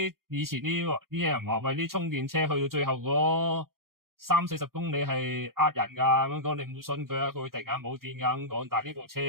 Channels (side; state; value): left; late; 0.93 ms